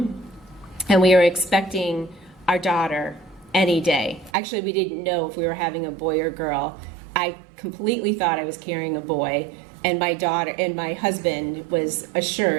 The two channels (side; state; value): left; drops out; at 4.3 s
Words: and we were expecting our daughter any day. Actually, we didn't know if we were having a boy or girl. I completely thought I was carrying a boy, and my husband was